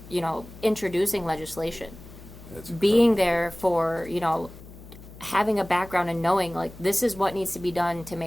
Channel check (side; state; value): left; noise; hum, 17 dB below the sound